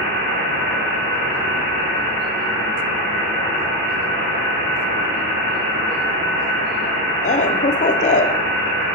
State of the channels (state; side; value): normal; both; correlation 0.09